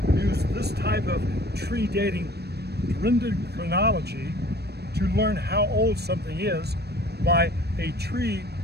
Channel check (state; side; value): late; left; 0.47 ms